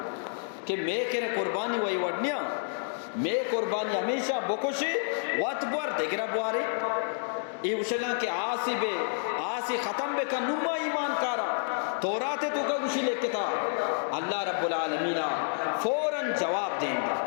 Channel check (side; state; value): right; silent; digital silence